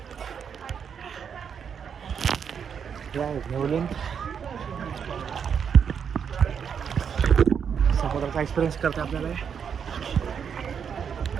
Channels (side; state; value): left; quieter; 7.2 dB